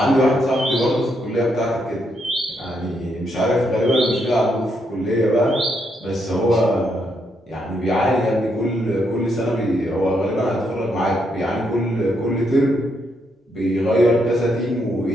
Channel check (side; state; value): both; normal; correlation 0.77